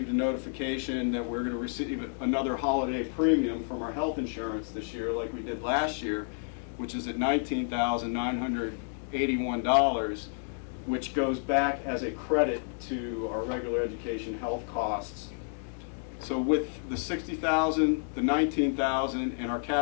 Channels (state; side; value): silent; right; 58 dB below the other